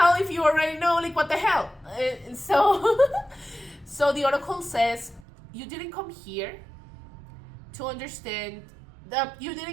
if you already know, like what the hell?" And so the Oracle says, "You didn't come here to understand that, you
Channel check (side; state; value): left; drops out; at 5.2 s